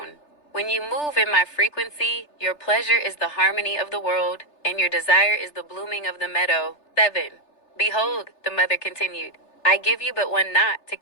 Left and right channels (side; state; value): right; late; 3.3 ms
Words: When you move in my frequency, your pleasure is the harmony of the world, and your desire is the blooming of the meadow. 7. Behold, the mother continued, I give you but one knot to